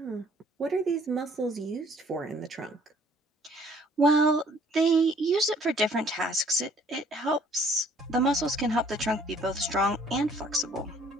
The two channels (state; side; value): normal; both; correlation 0.58